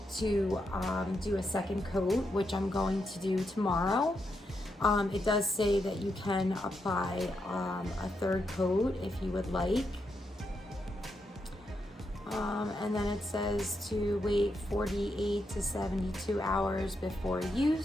to do a second coat, which I'm going to do tomorrow. It does say that you can apply a third coat if you would like. And then it says to wait 48 to 72 hours before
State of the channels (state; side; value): normal; both; correlation 0.83